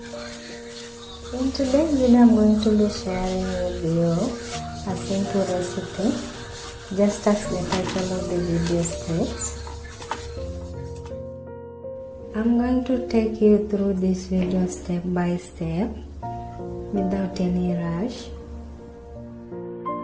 In today's video I'm going to be sharing with you a simple recipe, just as the title of the video states. I'm going to take you through this video step by step without any rush.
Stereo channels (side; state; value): both; identical; correlation 1.00